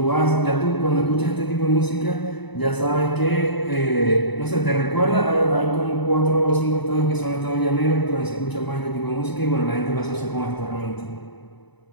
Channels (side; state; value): right; late; 0.99 ms